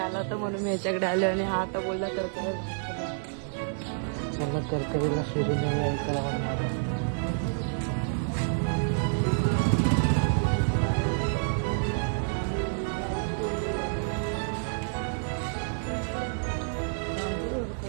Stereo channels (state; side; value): silent; left; digital silence